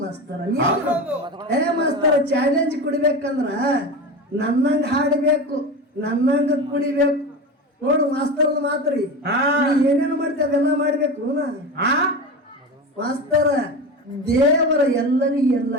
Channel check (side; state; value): both; normal; correlation 0.26